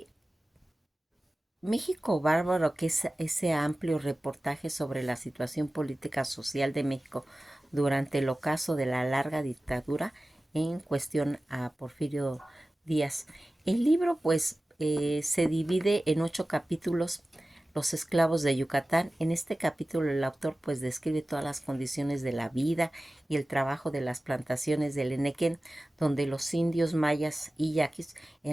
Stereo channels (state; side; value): normal; both; correlation 0.96